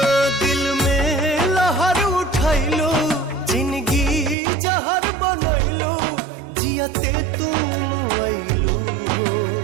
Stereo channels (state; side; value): drops out; left; at 4.4 s